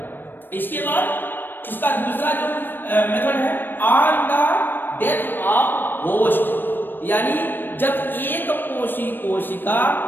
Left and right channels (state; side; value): late; right; 0.094 ms